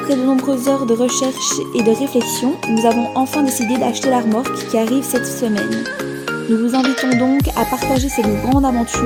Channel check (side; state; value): both; identical; correlation 1.00